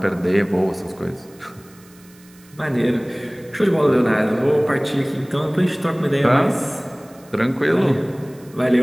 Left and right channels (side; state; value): right; noise; hiss, 27 dB below the sound